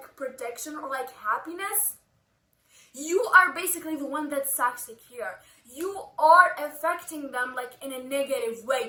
protection or like happiness, you are basically the one that's toxic here. You are affecting them like in a negative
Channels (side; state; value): both; identical; correlation 1.00